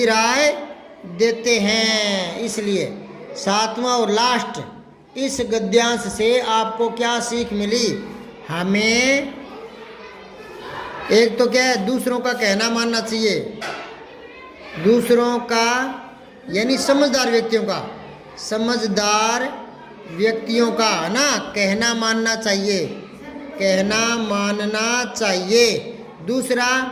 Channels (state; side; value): identical; both; correlation 1.00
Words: देते हैं। इसलिए 7वां और लास्ट, इस गद्यांश से आपको क्या सीख मिली? हमें एक तो क्या है, दूसरों का कहना मानना चाहिए, दूसरों का यानी समझदार व्यक्तियों का है ना, कहना मानना चाहिए। दूसरा,